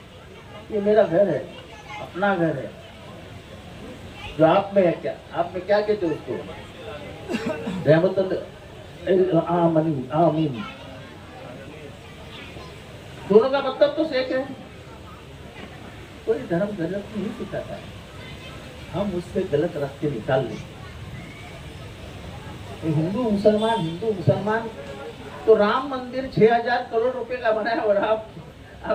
ये मेरा घर है, अपना घर है। जो आप में है, क्या आप में क्या कहते हो उसको? रहमतुल आमीन। दोनों का मतलब तो एक है। कोई धर्म गलत नहीं सिखाता है, हम उससे गलत रास्ते निकाल लें। हिंदू मुसलमान तो राम मंदिर 6000 करोड़ रुपए का बना है और आप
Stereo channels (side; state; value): both; identical; correlation 1.00